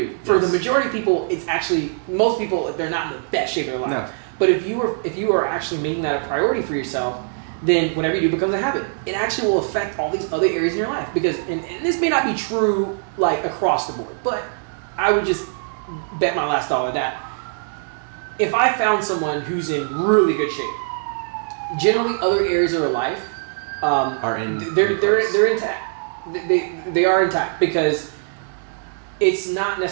For the majority of people, it's actually, most people, they're not in the best shape of their life. No. But if you are actually making that a priority for yourself, then whatever you do becomes a habit. It actually will affect all these other areas in your life. Because, and this may not be true like across the board, but I would just bet my last dollar that if I found someone who's in really good shape, generally other areas of their life they're intact. They are intact because it's not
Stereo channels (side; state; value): left; silent; 64 dB below the other